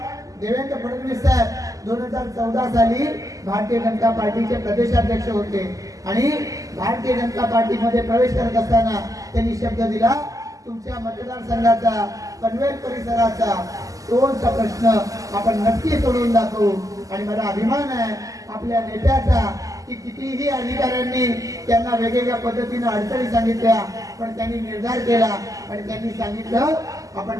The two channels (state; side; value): late; left; 0.17 ms